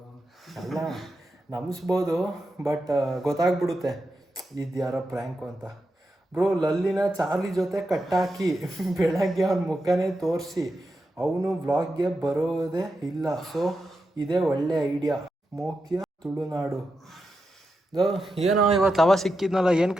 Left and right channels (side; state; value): both; normal; correlation 0.88